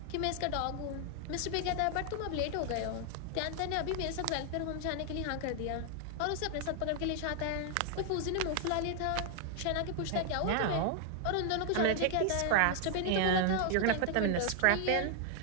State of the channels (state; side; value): different; both; correlation 0.00